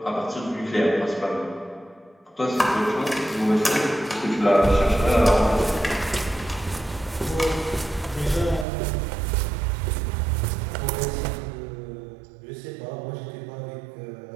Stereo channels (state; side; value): drops out; left; at 8.7 s